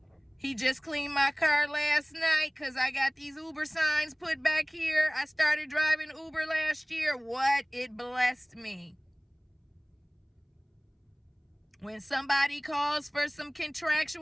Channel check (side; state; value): both; identical; correlation 1.00